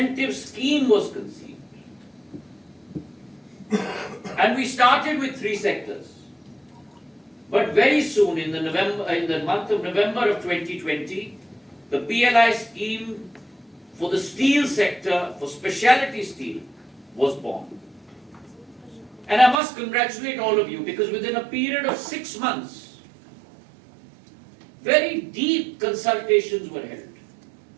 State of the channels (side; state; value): left; drops out; at 19.6 s